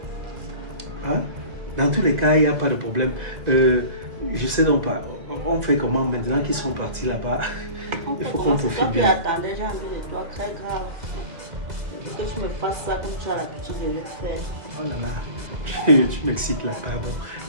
Hein? Dans tous les cas, il n'y a pas de problème. Je sais donc pas. On fait comment maintenant qu'ils sont partis là-bas? Il faut qu'on profite bien. Attendez, j'ai envie de toi, très grave. Je veux que tu me fasses ça comme tu as l'habitude de le faire. Oh là là, tu m'excites là, pardon.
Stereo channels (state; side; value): late; left; 2.0 ms